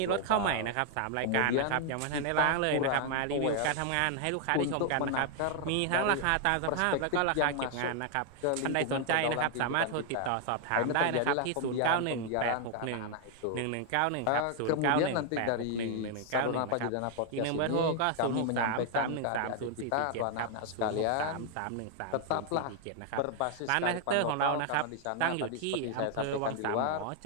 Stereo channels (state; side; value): different; both; correlation 0.00